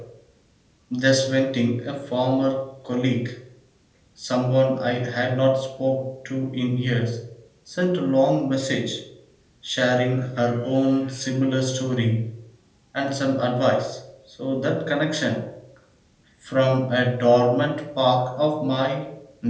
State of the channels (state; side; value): identical; both; correlation 1.00